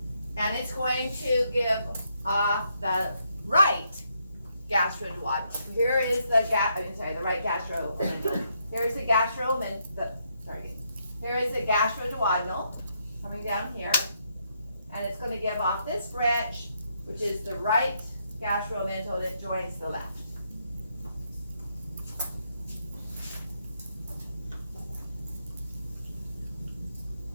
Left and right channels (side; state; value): both; inverted; correlation -0.77